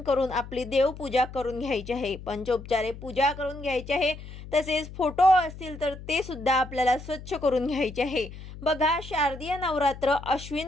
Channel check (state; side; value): noise; left; hum, 14 dB below the sound